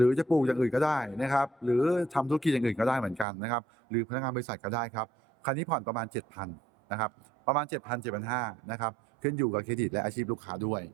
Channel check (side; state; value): left; drops out; at 3.2 s